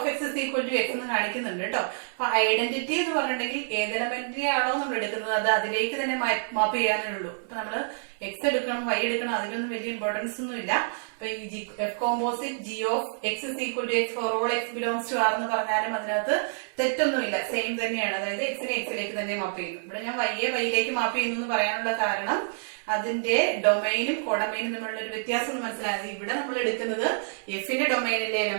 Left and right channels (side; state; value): left; silent; 60 dB below the other